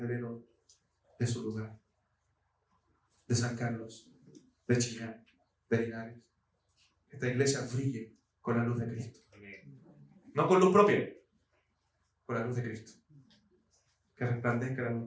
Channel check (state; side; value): identical; both; correlation 1.00